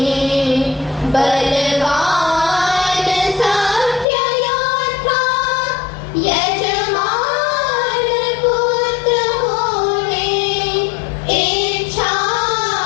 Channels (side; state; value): right; drops out; at 4.0 s